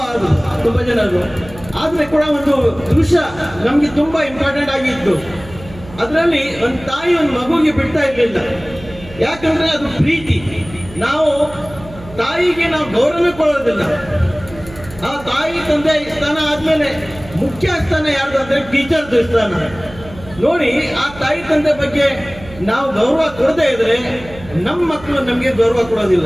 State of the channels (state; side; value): noise; right; hum, 18 dB below the sound